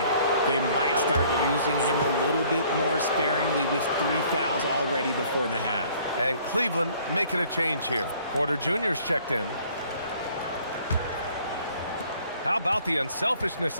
They might start using him a little bit more sparingly with 3 fouls already before the half. And Cleveland making a change here. Porter Jr.'s checked in. How about the unselfishness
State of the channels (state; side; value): inverted; both; correlation -0.58